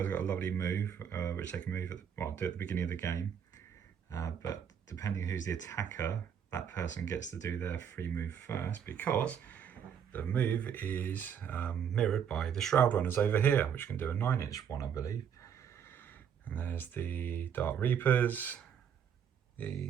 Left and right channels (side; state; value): left; quieter; 8.2 dB